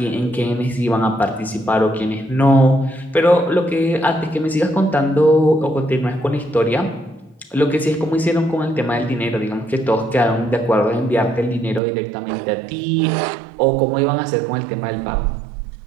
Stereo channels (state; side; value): drops out; left; at 11.8 s